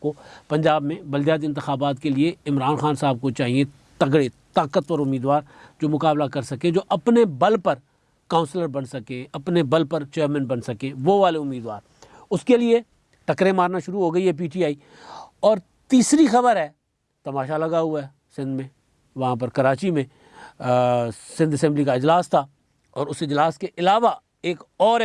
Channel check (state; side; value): identical; both; correlation 1.00